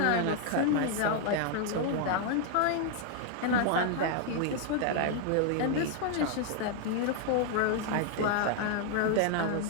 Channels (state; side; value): different; both; correlation 0.00